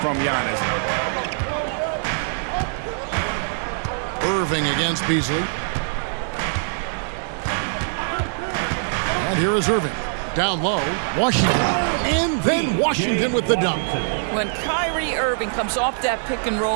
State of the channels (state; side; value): silent; left; digital silence